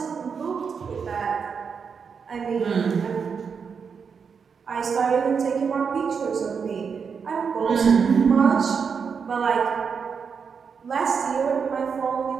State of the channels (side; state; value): left; quieter; 6.1 dB